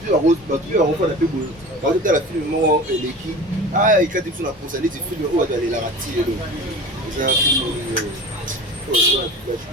la refaire la plus beau. Quand tu as la film, l'équipe, ah, il y a des choses à penser, les films, où aller la rater. C'est un film.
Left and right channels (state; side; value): normal; both; correlation 0.36